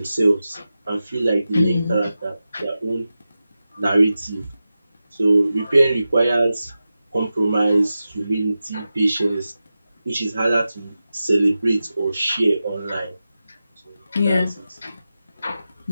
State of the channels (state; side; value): inverted; both; correlation -0.93